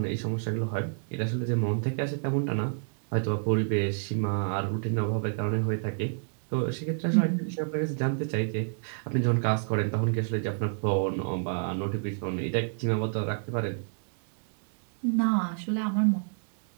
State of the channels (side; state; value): left; silent; digital silence